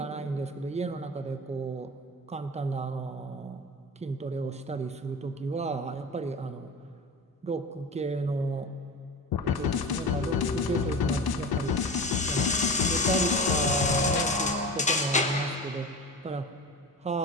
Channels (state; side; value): normal; both; correlation 0.30